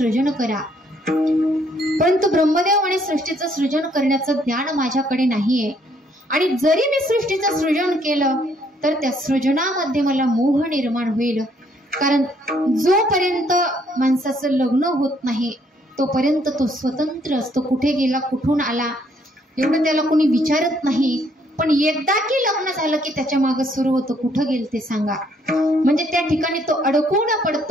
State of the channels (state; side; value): normal; both; correlation 0.67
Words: करा, परंतु ब्रह्मदेव म्हणे सृष्टीचं सृजन करण्याचं ज्ञान माझ्याकडे नाहीये, आणि जरी मी सृष्टीचं सृजन केलं तर त्या सृजनामध्ये मला मोह निर्माण होईल. कारण जोपर्यंत माणसाचं लग्न होत नाही तोपर्यंत तो स्वतंत्र असतो. कुठे गेला, कुठून आला, एवढं त्याला कोणी विचारत नाही. पण एकदा की लग्न झालं की त्याच्या मागे सुरू होतं कुठं गेल ते सांगा. म्हणजे त्या ठिकाणी तो अडकून